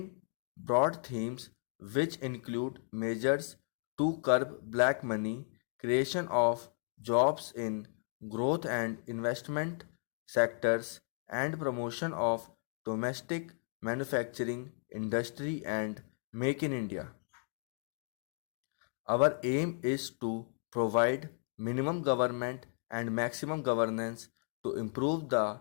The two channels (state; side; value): silent; right; 55 dB below the other